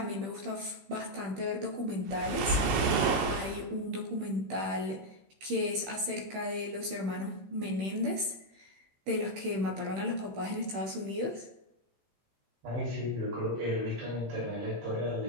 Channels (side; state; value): left; late; 15 ms